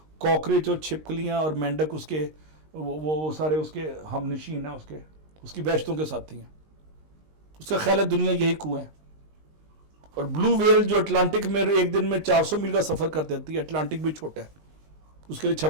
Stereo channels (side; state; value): left; late; 19 ms